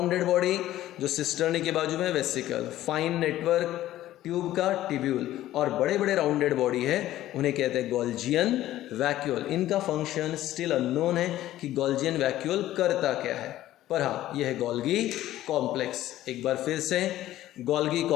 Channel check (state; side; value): quieter; right; 14.2 dB